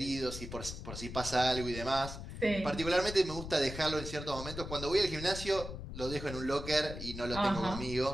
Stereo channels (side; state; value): left; noise; rumble, 9 dB below the sound